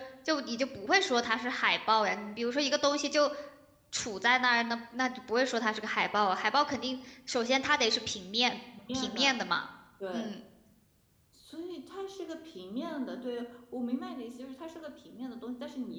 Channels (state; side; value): identical; both; correlation 1.00